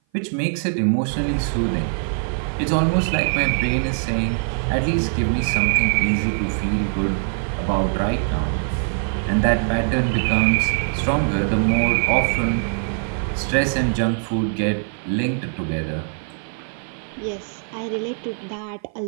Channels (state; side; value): silent; left; 56 dB below the other